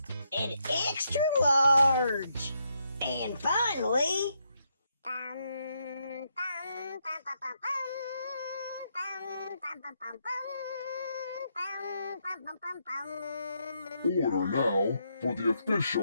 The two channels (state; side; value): inverted; both; correlation -0.79